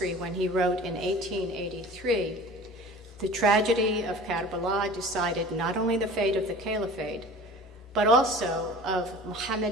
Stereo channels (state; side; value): normal; both; correlation 0.42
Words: when he wrote in 1883, "The tragedy of Karbala decided not only the fate of the caliphate, but also of